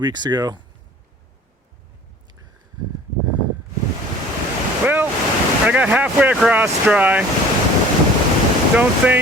weeks ago. Well, I got halfway across dry. Don't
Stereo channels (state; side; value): normal; both; correlation 0.47